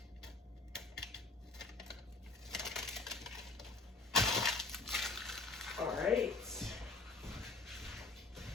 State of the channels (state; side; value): quieter; right; 3.7 dB